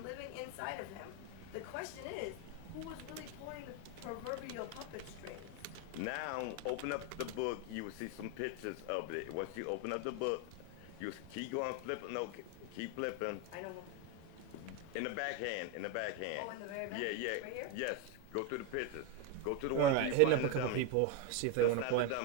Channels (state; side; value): different; both; correlation 0.02